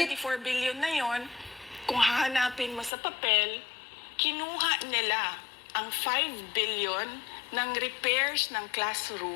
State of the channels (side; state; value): right; drops out; at 2.9 s